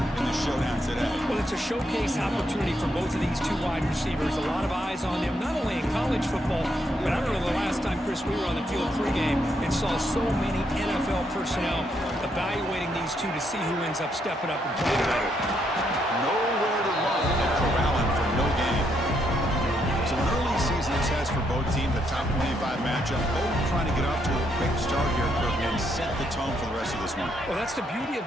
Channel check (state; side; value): normal; both; correlation 0.76